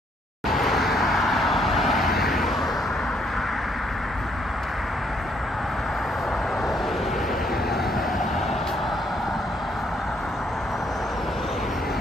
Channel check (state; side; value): normal; both; correlation 0.70